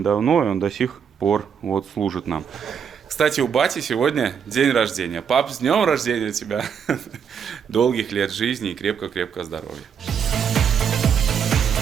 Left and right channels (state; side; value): quieter; left; 7.4 dB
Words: давно, и он до сих пор вот служит нам. Кстати, у бати сегодня день рождения. Пап, с днем рождения тебя! Долгих лет жизни и крепко-крепко здоровья.